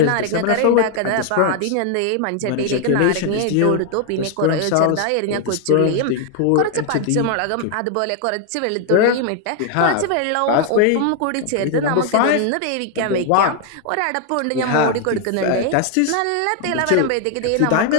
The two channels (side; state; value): both; different; correlation 0.00